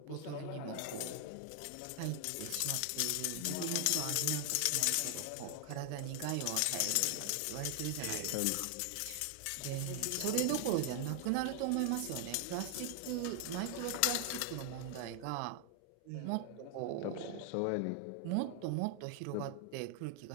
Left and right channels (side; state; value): both; different; correlation 0.00